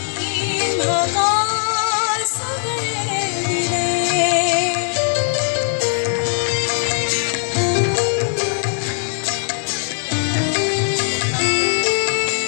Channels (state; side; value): silent; right; digital silence